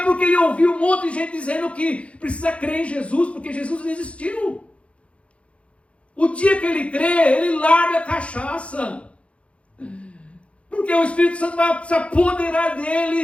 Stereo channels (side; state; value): right; late; 0.062 ms